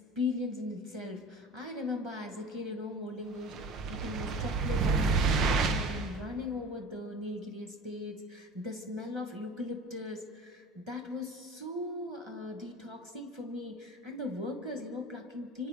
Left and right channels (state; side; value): normal; both; correlation 0.38